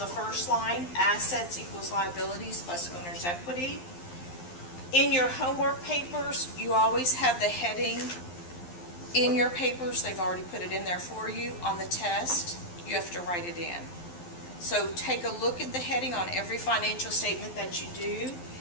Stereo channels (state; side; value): late; right; 11 ms